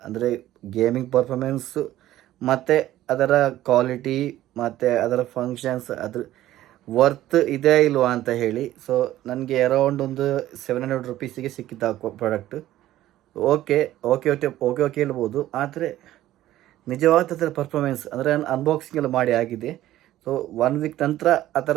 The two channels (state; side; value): quieter; left; 14.2 dB